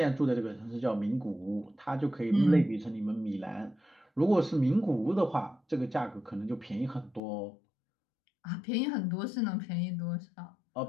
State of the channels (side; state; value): right; drops out; at 7.2 s